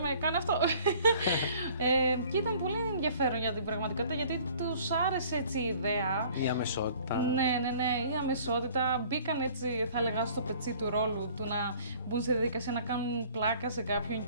«Κάνε αυτό». Και ήταν πολύ ενδιαφέρον για την πραγματικότητα γιατί τους άρεσε έτσι η ιδέα. Η αμεσότητα. Ναι, η αμεσότητα. Μπήκαν έτσι, θα έλεγα, στο πετσί του ρόλου του να μπουν σε διαδικασία να κάνουν πλάκα σε κάποιον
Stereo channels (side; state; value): both; inverted; correlation -0.53